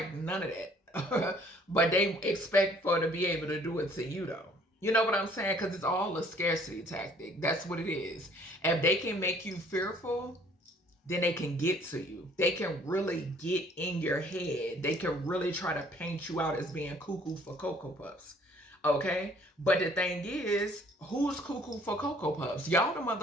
none of that. But they expect for to be able to do it to you though. You know what I'm saying? Because it's all a scarcity tactic. That's what it is. If they can make you fearful, then they can get to you. They can really get in your head. They can really try to paint you out as being cuckoo for Cocoa Puffs. Okay? But the thing is, who's cuckoo for Cocoa Puffs? Y'all the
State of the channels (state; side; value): normal; both; correlation 0.58